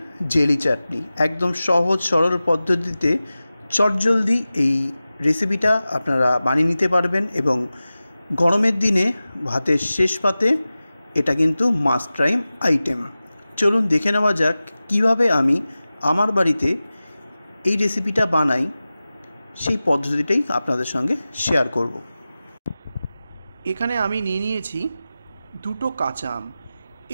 জেলি চাটনি, একদম সহজ সরল পদ্ধতিতে চটজলদি এই রেসিপিটা আপনারা বানিয়ে নিতে পারবেন এবং গরমের দিনে ভাতের শেষ পাতে এটা কিন্তু মাস্ট ট্রাই আইটেম। চলুন দেখে নেওয়া যাক কীভাবে আমি আমার বাড়িতে এই রেসিপিটা বানাই, সেই পদ্ধতিটাই আপনাদের সঙ্গে শেয়ার করব। এখানে আমি নিয়ে নিয়েছি দুটো কাঁচা আম।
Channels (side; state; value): both; inverted; correlation -0.96